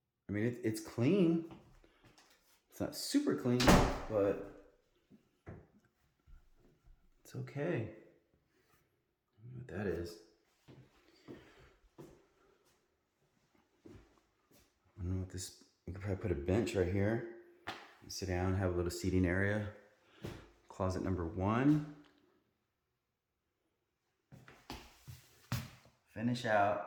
I mean, it's clean. It's not super clean, but it's okay. I don't know what that is. I don't know what this, you could probably put a bench right here. Sit down, have a little seating area. Closet number 1. Finish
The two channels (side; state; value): both; identical; correlation 1.00